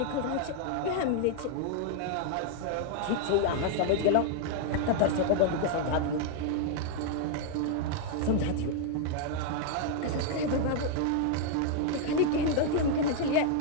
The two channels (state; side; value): different; both; correlation 0.00